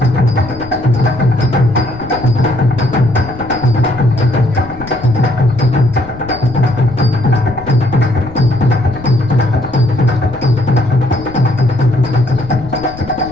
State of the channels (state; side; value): noise; left; rumble, 15 dB below the sound